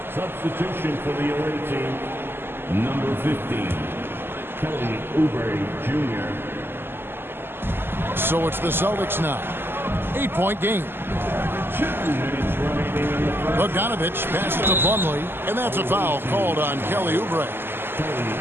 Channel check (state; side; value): late; left; 0.11 ms